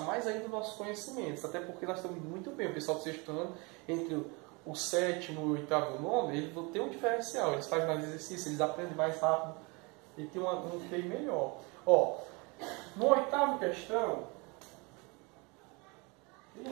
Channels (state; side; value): quieter; left; 28.9 dB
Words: ainda os nossos conhecimentos. Até porque nós estamos muito bem. O pessoal do sexto ano, entre o sétimo e o oitavo e o nono, eles vão ter um diferencial. Eles fazem mais exercício, eles aprendem mais rápido. E tem um QI melhor. Ó, no oitavo questão,